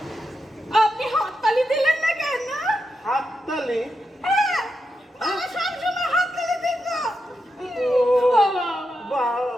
আপনি হাততালি দিলেন না কেন? হাততালি? হ্যাঁ, বাবা সবসময় হাততালি দিত। বাবা,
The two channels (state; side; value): normal; both; correlation 0.86